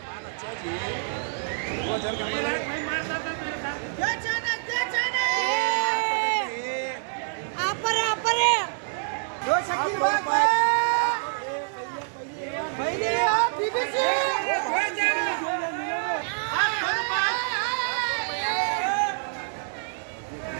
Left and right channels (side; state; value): left; silent; 60 dB below the other